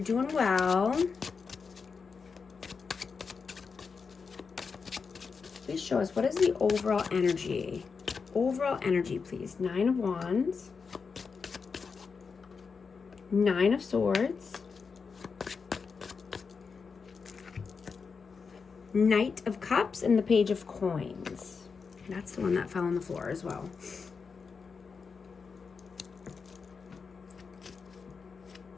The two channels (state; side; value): quieter; right; 5.3 dB